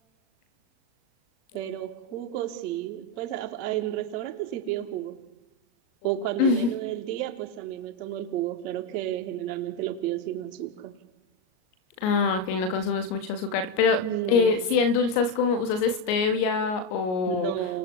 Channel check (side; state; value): right; late; 38 ms